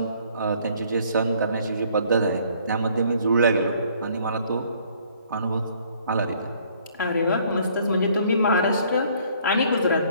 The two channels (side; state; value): both; inverted; correlation -0.61